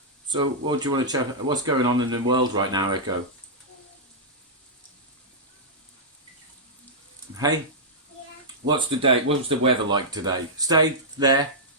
So, what do you want to chat? What's going on in the world right now, Echo? Hey? Yeah. What's the weather like today? Stay there.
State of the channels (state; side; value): normal; both; correlation -0.11